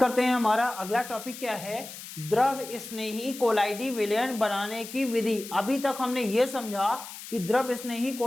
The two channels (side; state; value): left; noise; hiss, 12 dB below the sound